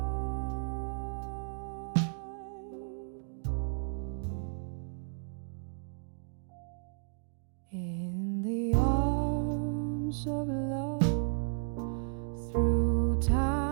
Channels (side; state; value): left; silent; digital silence